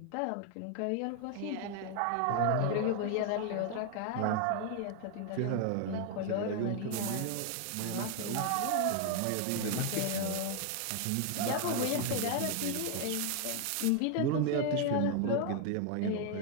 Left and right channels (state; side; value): different; both; correlation 0.00